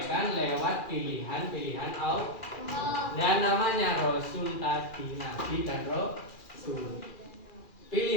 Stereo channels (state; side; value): late; right; 2.4 ms